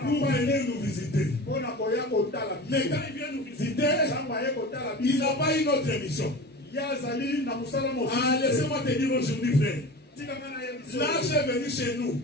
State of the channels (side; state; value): both; normal; correlation 0.34